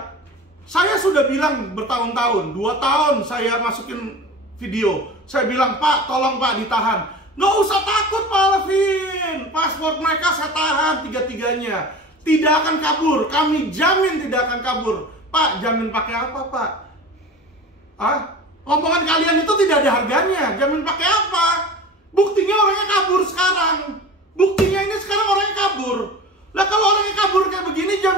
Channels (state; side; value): normal; both; correlation 0.35